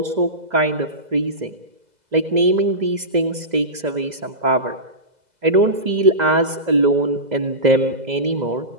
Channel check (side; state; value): left; late; 2.0 ms